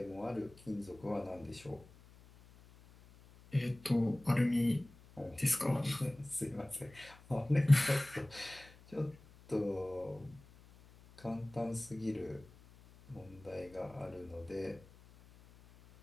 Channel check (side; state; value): left; noise; hum, 23 dB below the sound